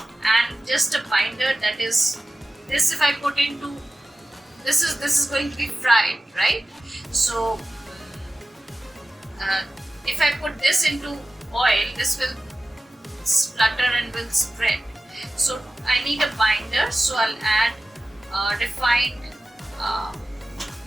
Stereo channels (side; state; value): both; normal; correlation 0.95